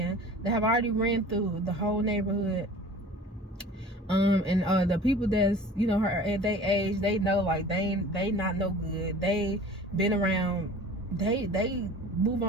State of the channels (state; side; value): normal; both; correlation 0.43